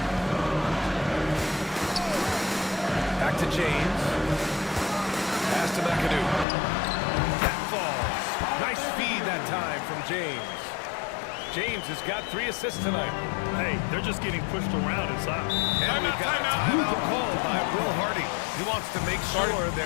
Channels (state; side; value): drops out; right; at 6.5 s